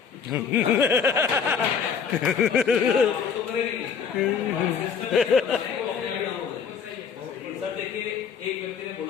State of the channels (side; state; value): right; quieter; 6.6 dB